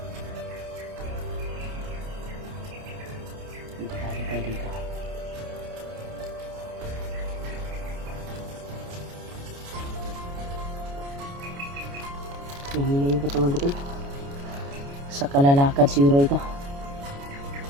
Delikado tayo dito. Nahina yung katawan ko to. Sa kalalakad siguro ito.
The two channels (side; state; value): left; late; 29 ms